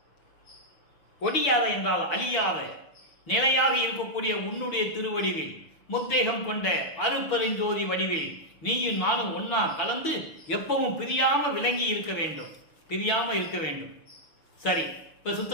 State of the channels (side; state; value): right; late; 6.4 ms